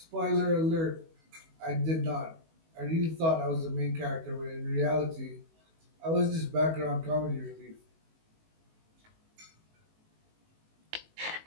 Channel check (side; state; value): left; late; 19 ms